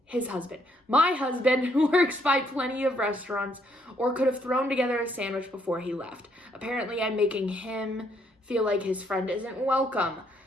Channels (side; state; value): both; normal; correlation 0.71